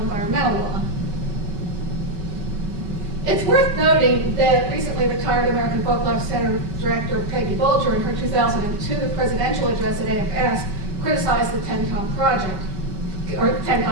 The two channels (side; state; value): left; late; 5.2 ms